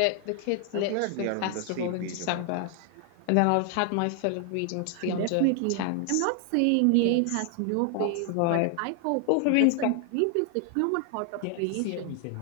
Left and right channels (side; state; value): both; different; correlation 0.00